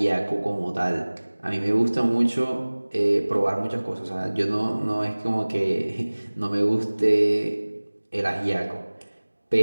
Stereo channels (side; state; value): both; inverted; correlation -1.00